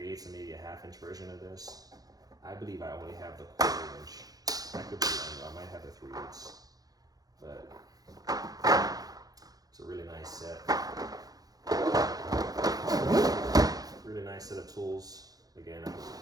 and maybe a 1/2-inch version of this. I believe I only have the 1/4-inch. I could be wrong, I might have the 3/8. But it's a really nice set. Really nice set of tools. Again,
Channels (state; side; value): late; left; 0.18 ms